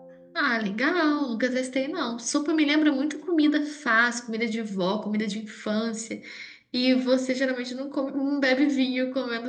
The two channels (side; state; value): both; identical; correlation 1.00